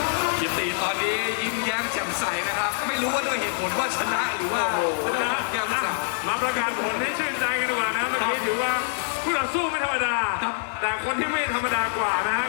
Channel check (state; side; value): silent; right; digital silence